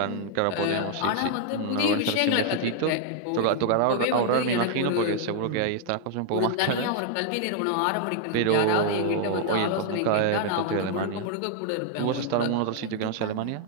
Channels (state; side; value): different; both; correlation -0.01